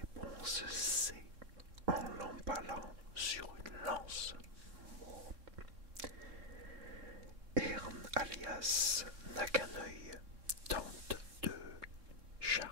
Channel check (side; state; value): left; late; 3.6 ms